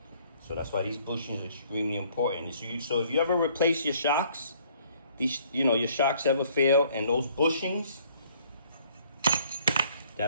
So that's why these bushings are extremely important. So if you ever replace your shocks, your shocks ever fail, and those bushings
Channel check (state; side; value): inverted; both; correlation -0.60